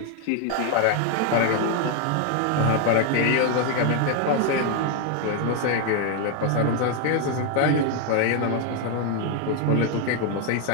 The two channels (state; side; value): different; both; correlation 0.01